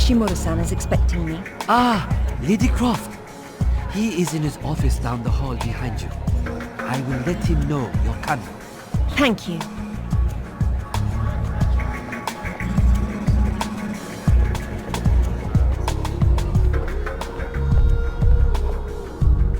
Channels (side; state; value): both; identical; correlation 1.00